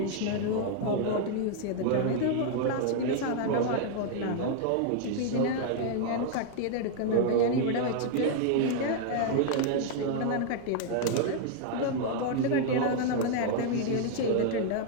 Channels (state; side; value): different; both; correlation 0.00